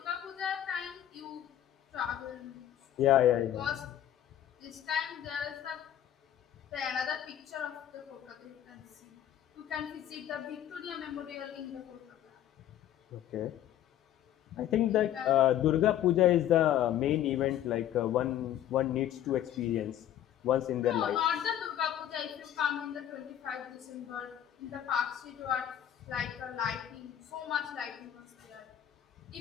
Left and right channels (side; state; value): right; quieter; 11.2 dB